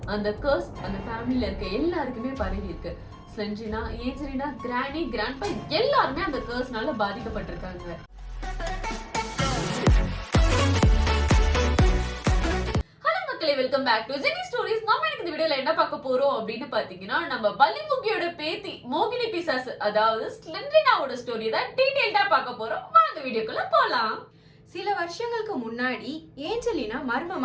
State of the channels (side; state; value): both; identical; correlation 1.00